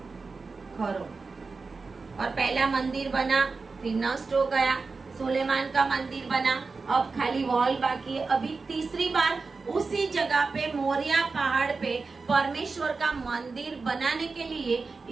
करो, और पहला मंदिर बना, फिर नष्ट हो गया, सुलेमान का मंदिर बना, अब खाली वॉल बाकी है। अभी तीसरी बार उसी जगह पे मोरिया पहाड़ पे परमेश्वर का मंदिर बनाने के लिए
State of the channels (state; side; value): quieter; left; 4.3 dB